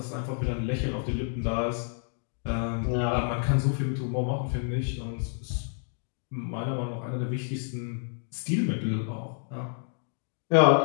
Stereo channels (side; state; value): right; silent; 58 dB below the other